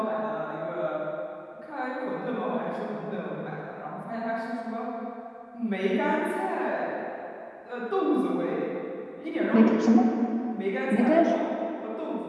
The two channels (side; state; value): both; identical; correlation 1.00